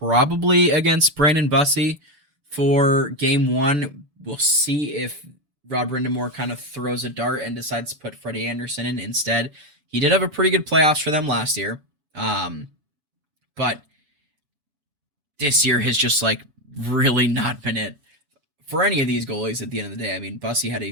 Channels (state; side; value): late; left; 6.8 ms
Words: against Brandon Bussey for game 1. We'll see if Rod Brindamore kind of throws a dart and decides to put Freddie Anderson in instead. He did have a pretty good playoffs for them last year. But this year has just really not been it for any of these goalies at the end of the day. I mean, Bussey had a